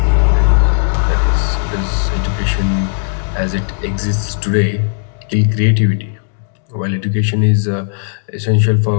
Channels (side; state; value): right; silent; digital silence